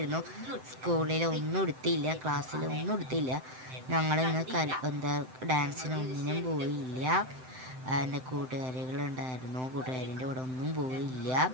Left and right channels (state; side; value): late; left; 7.8 ms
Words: സ്കൂളിൽ ഒന്നും എടുത്തില്ല, ക്ലാസ്സിൽ ഒന്നും എടുത്തില്ല. ഞങ്ങൾ ഇന്ന് ഡാൻസിനൊന്നിനും പോയില്ല. എൻ്റെ കൂട്ടുകാരികളുണ്ടായിരുന്നു, കൂട്ടുകാരിൻ്റെ കൂടെ ഒന്നും പോയില്ല.